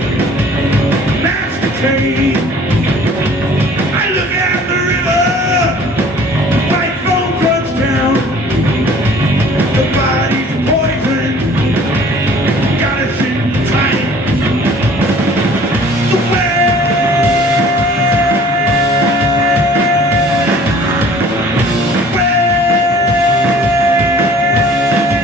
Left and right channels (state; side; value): normal; both; correlation 0.51